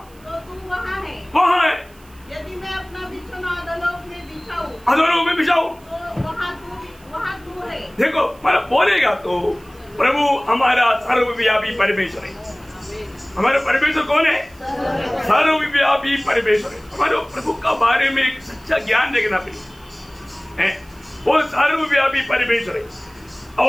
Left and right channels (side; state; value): right; noise; hiss, 28 dB below the sound